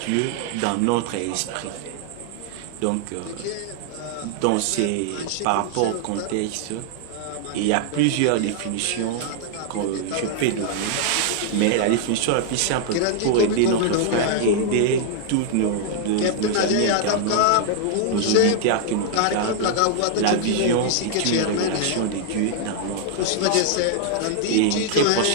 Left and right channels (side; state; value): both; different; correlation 0.00